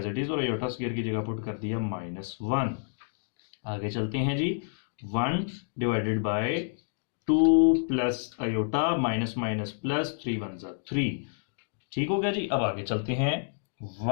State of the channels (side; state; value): right; silent; digital silence